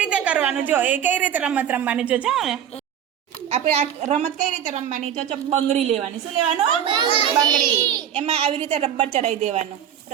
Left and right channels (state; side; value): quieter; left; 9.6 dB